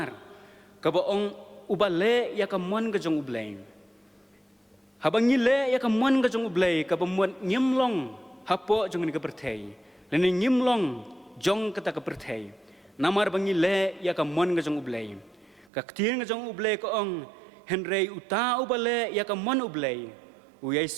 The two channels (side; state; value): left; drops out; at 15.7 s